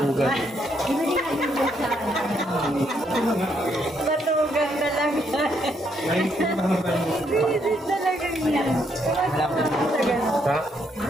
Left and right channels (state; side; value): normal; both; correlation 0.74